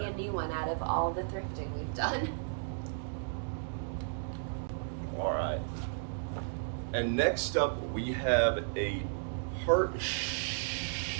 a new one out of all the thrifting we've done. All right. And next up, we have a Hart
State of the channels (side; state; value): left; silent; digital silence